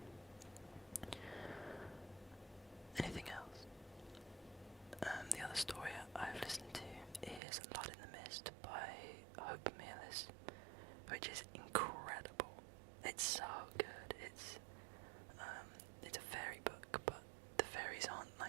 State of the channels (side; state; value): left; drops out; at 7.4 s